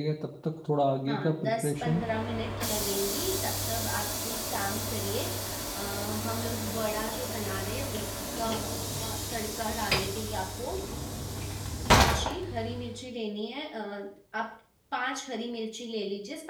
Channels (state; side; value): identical; both; correlation 1.00